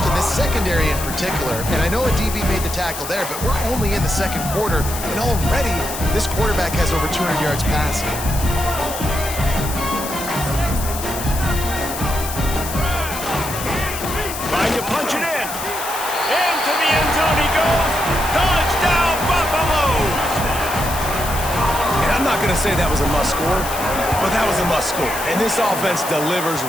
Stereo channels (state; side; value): noise; left; hiss, 8 dB below the sound